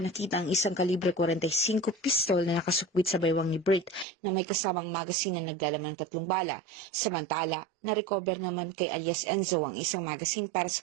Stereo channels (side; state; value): left; drops out; at 4.0 s